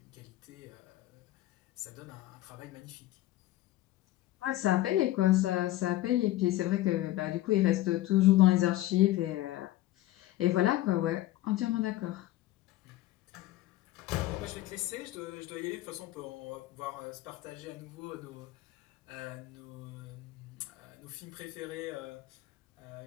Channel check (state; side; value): quieter; right; 15.8 dB